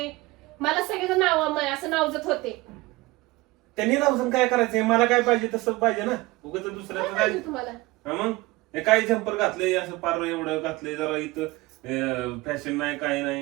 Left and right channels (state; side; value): quieter; left; 20.9 dB